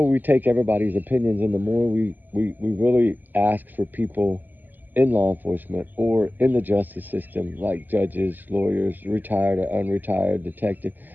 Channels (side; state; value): left; late; 0.087 ms